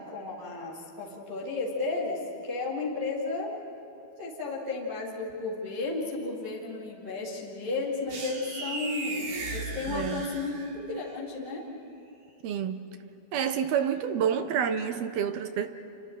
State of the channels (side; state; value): left; late; 12 ms